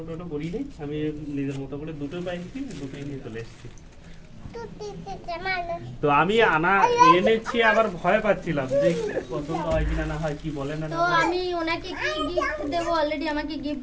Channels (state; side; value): identical; both; correlation 1.00